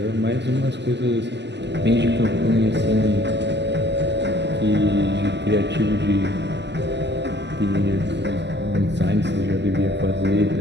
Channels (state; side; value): late; left; 0.51 ms